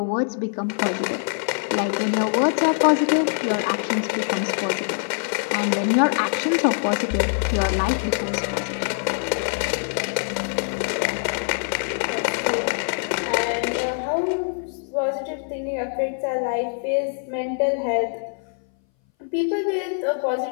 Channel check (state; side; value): silent; right; 60 dB below the other